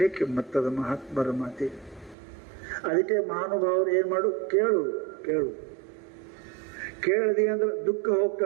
ಕಿಮ್ಮತ್ತದ ಮಹಾತ್ಮರ ಮಾತಿಗೆ. ಅದಕ್ಕೆ ಮಹಾನುಭಾವರು ಏನು ಮಾಡು, ಕೇಳು ಕೇಳು. ಕೇಳದಿ ಅಂದ್ರೆ ದುಃಖ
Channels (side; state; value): left; drops out; at 2.1 s